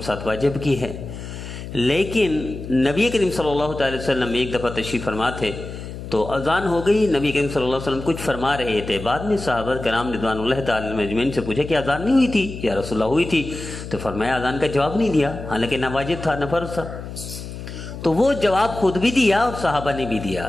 ساتھ واجب کی ہے، لیکن نبی کریم صلی اللہ تعالی وسلم ایک دفعہ تشریف فرما تھے تو اذان ہو گئی، نبی کریم صلی اللہ علیہ وسلم کچھ فرما رہے تھے، بعد میں صحابہ کرام رضوان اللہ تعالی اجمعین سے پوچھا کہ اذان نہیں ہوئی تھی یا رسول اللہ ہوئی تھی؟ تو فرمایا اذان کا جواب نہیں دیا، حالانکہ نہ واجب تھا نہ فرض تھا، تو وہ جواب خود بھی دیا اور صحابہ نے بھی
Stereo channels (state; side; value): noise; left; hum, 10 dB below the sound